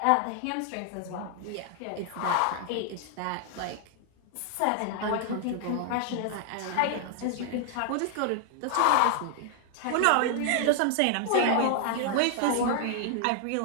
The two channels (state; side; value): different; both; correlation 0.00